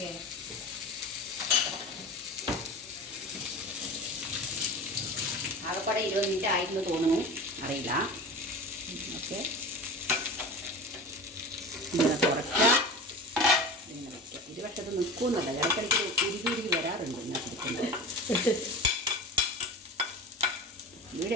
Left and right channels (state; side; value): normal; both; correlation 0.32